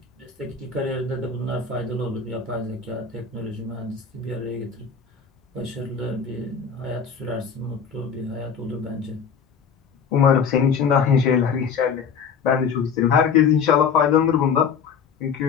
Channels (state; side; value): quieter; right; 6.3 dB